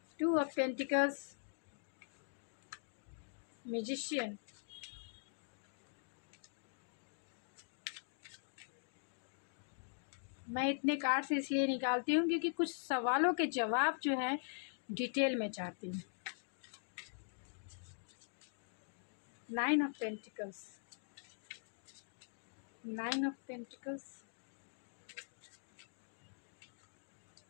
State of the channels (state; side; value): silent; right; digital silence